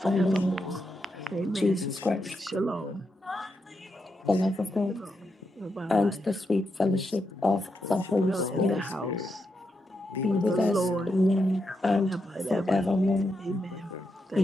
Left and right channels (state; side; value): normal; both; correlation 0.84